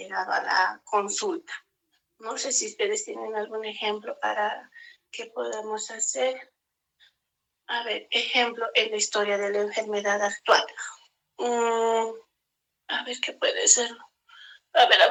a la consulta. No sé si ustedes tienen algún ejemplo para que podamos hacer. A ver, ejemplo en la historia de la enfermedad actual. A ver qué puede ser. A ver,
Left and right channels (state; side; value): identical; both; correlation 1.00